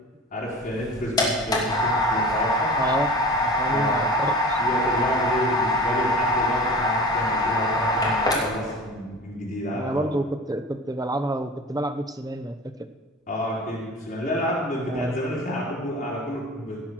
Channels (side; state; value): both; normal; correlation 0.37